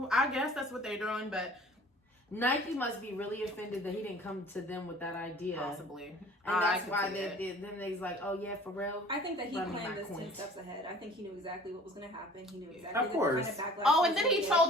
I guess that's what they're doing, but Nike must be really offended that he didn't come to them with that idea. possibly. And I that's could why see they it. did. Then they's like, oh yeah, for real. I think that he Run me planned my this 10 coins. steps ahead. I think he knew exactly what was going to happen. He knew exactly Of course. the kind of backlash. Oh, was and then gonna he get.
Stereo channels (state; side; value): normal; both; correlation 0.48